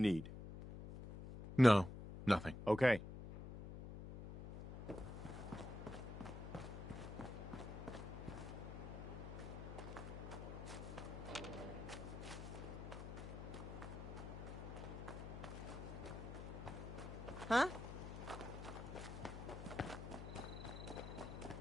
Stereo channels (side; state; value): left; noise; hum, 8 dB below the sound